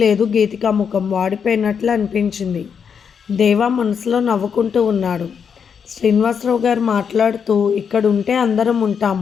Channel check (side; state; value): right; quieter; 6.9 dB